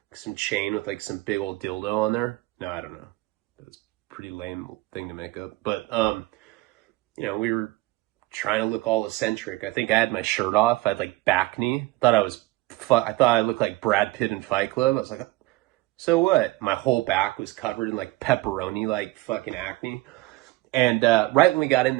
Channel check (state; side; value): quieter; left; 19.4 dB